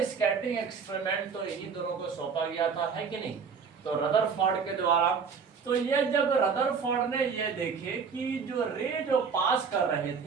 स्कैटरिंग एक्सपेरिमेंट तो इन्हीं दोनों को सौंपा गया था, है कि नहीं, तो रदरफोर्ड के द्वारा। तो ये जब रदरफोर्ड ने ये देखे कि जो रे जो पास कर रहे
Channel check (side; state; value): left; quieter; 5.9 dB